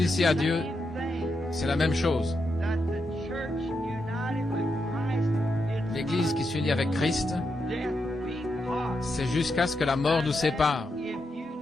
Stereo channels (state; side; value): normal; both; correlation 0.84